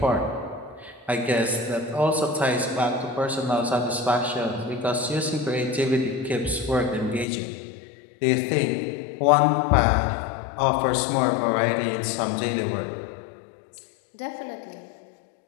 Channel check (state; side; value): drops out; right; at 7.2 s